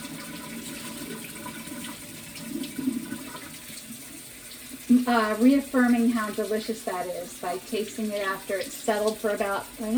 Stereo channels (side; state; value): both; identical; correlation 1.00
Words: Reaffirming how delicious that is by tasting it after it's settled for about,